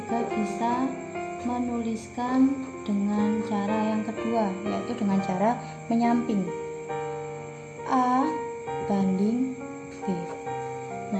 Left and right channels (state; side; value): identical; both; correlation 1.00